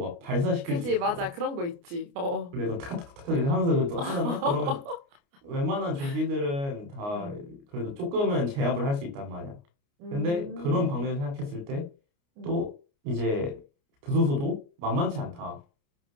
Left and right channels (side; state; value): left; late; 29 ms